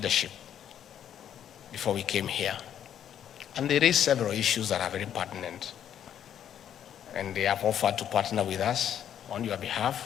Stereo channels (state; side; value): quieter; right; 9.7 dB